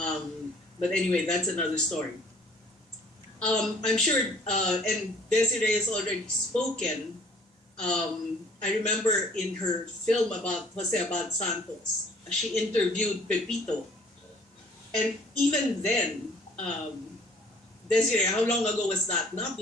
anyway, that's another story. I'm sure, and Desiree has already spoken. I remember in her film about Jose Abad Santos, she interviewed Pepito. And even then, Desiree, how long ago was that? Not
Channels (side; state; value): both; normal; correlation 0.56